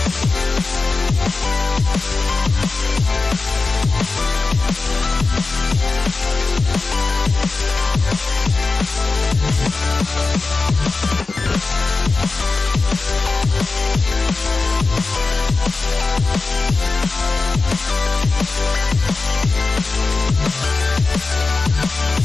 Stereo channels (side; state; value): right; quieter; 3.9 dB